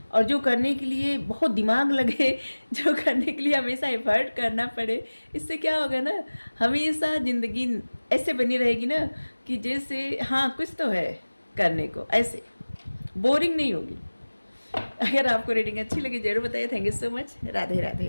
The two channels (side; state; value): both; inverted; correlation -1.00